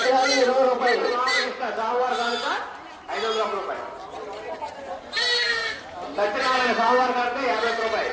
20 రూపాయలు. సోమవారం కనుక 501 రూపాయలు. సత్యనారాయణ సోమవారం కనుక 50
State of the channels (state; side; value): identical; both; correlation 1.00